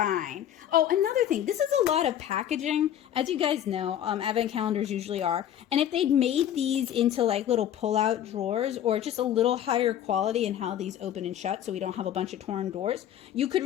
Oh, another thing, this is a lot of packaging. As you guys know, advent calendars usually are. And if they'd made these into like little pull-out drawers or just a little higher quality in how these open and shut so we don't have a bunch of torn doors, you could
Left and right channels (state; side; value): quieter; right; 10.7 dB